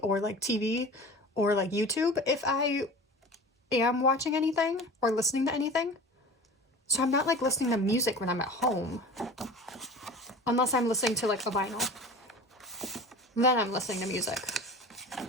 like, TV or, like, YouTube if I am watching anything or listening to anything. So I'm not, like, listening to music when I'm at home. Unless I'm listening to, like, a vinyl. Then I'm listening to music.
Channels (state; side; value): normal; both; correlation 0.37